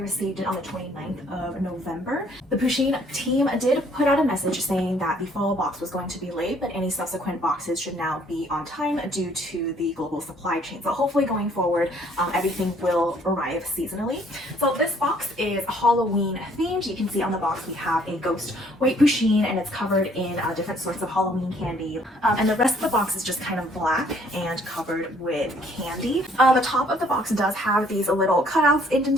it on the 29th of November. The Pusheen team did put out a message saying that the fall box was going to be late, but any subsequent boxes should now be on time due to the global supply chain. So hopefully going forward, everything will arrive seasonally. So this box is Halloween themed. You can see on the box we have a ghost white Pusheen and it's covered in different sorts of Halloween candy. And the rest of the box is just kind of black and covered with candy. The top of the box does have these little cutouts,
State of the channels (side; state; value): both; normal; correlation 0.62